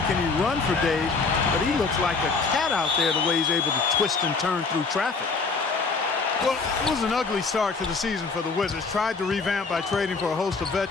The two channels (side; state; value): right; quieter; 4.4 dB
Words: can he run for days, but he looks like a cat out there the way he's able to twist and turn through traffic. Well, it was an ugly start to the season for the Wizards. Tried to revamp by trading for a host of